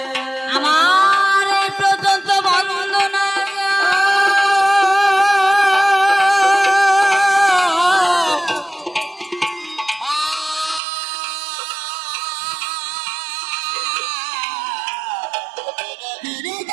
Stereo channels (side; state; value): left; drops out; at 10.8 s